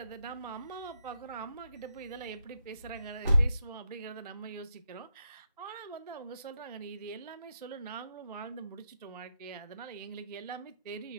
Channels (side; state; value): both; inverted; correlation -0.81